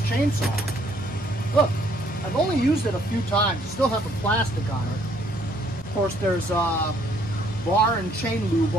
Look, I've only used it a few times. It still has the plastic on it. Of course, there's bar and chain lube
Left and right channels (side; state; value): both; normal; correlation 0.65